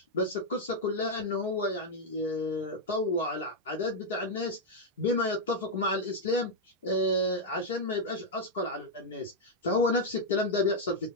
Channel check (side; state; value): both; normal; correlation 0.00